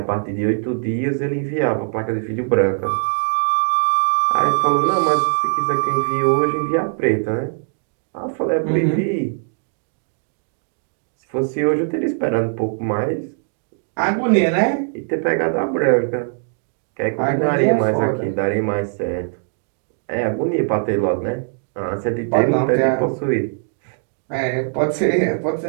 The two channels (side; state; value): left; silent; digital silence